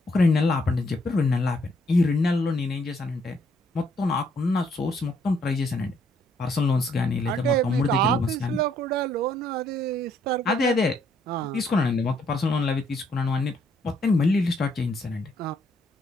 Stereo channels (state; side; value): normal; both; correlation 0.69